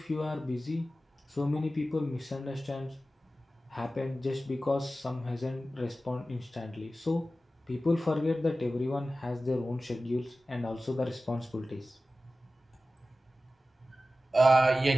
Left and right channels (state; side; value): normal; both; correlation 0.95